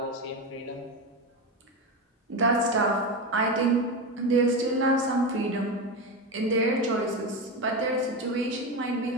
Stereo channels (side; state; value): both; normal; correlation 0.17